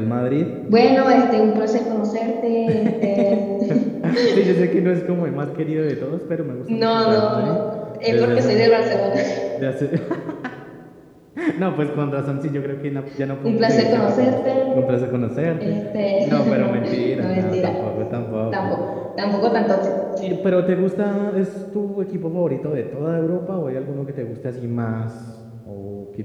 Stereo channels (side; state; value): both; identical; correlation 1.00